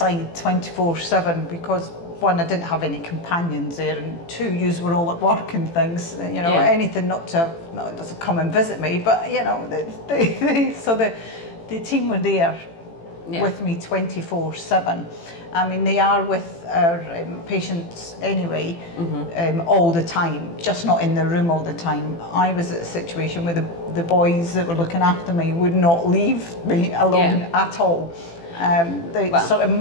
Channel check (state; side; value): late; right; 18 ms